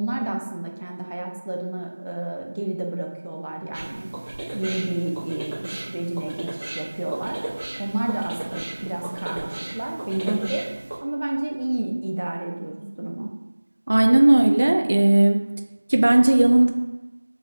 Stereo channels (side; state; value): both; inverted; correlation -1.00